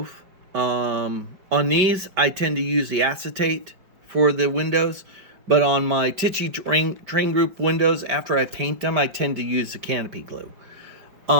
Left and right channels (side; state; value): left; late; 5.1 ms